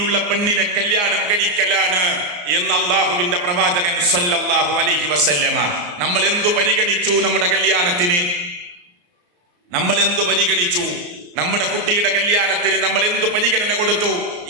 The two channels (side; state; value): left; late; 34 ms